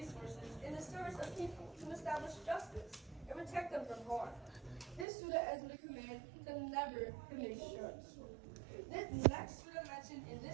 in the service of people to establish justice and protect them from harm. This surah is a command to never commit shirks. The next surah mentioned in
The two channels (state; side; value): drops out; left; at 5.1 s